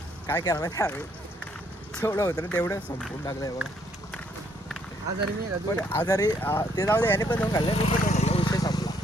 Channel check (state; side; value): normal; both; correlation 0.69